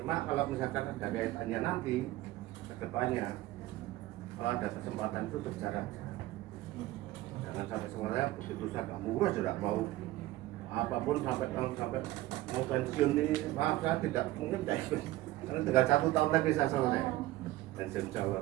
kalau misalkan ada kaitannya nanti ke depannya, kalau ada kesempatan itu berjalan. Jangan sampai semuanya begitu saya murah sudah mau apapun sampai mau pensiun ini, maaf saya tidak mungkin tidak ikut. Karena tinggal 1 tahun lagi saya selesai pensiun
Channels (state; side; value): quieter; left; 16.7 dB